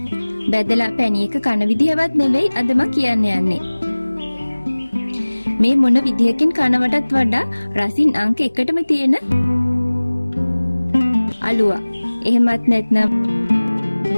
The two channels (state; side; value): inverted; both; correlation -1.00